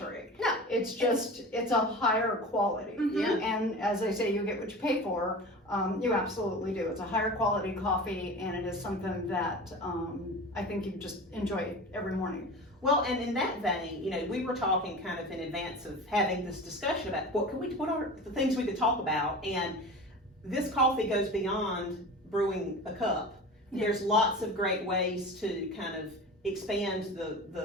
No. It's just, it's a higher quality. Yeah. And as they say, you get what you pay for. You absolutely do. It's a higher quality coffee, and it is something that I think you just enjoy every morning. Well, and in that vein, you know, we were talking kind of in advance of having this discussion about what are the things we could talk about, and this coffee goes beyond brewing a cup. Yeah. There's lots of great ways to kind of expand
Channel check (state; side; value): normal; both; correlation 0.34